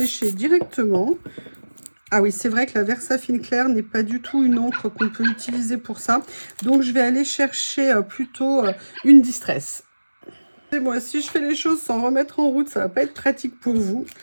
directement. Ah oui, c'est vrai que la Versafine Clair n'est pas du tout une encre qu'on peut utiliser pour ça. Donc, je vais aller chercher plutôt une Distress. Et moi, si je fais les choses sans remettre en route, ça va pas être pratique pour vous.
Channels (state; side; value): inverted; both; correlation -1.00